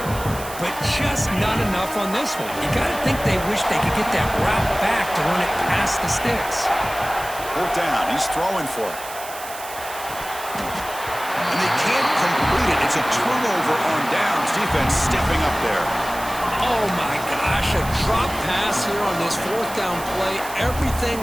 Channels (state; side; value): noise; right; hiss, 13 dB below the sound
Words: but just not enough on this one. You got to think they wish they could get that route back to run it past the sticks. 4th down. He's throwing for it. And they can't complete it. It's a turnover on downs. Defense stepping up there. Oh, my gosh. A drop pass here on this 4th down play. Everything